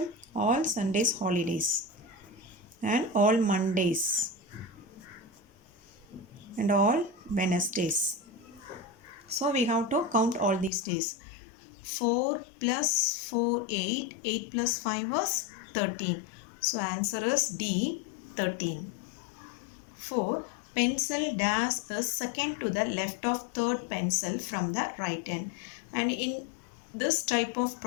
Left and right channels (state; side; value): drops out; right; at 10.7 s